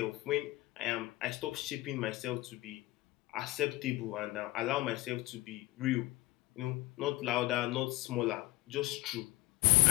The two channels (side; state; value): right; quieter; 19.3 dB